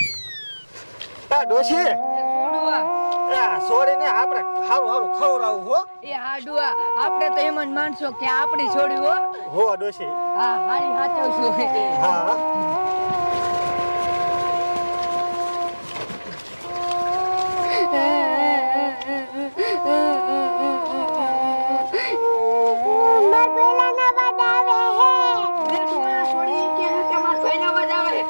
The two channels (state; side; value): inverted; both; correlation -1.00